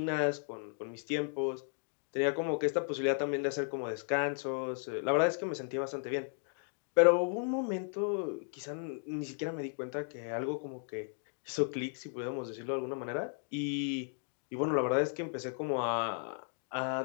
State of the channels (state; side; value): silent; right; 54 dB below the other